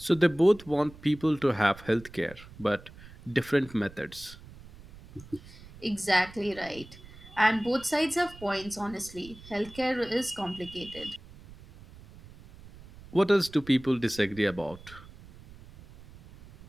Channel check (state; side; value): noise; right; rumble, 19 dB below the sound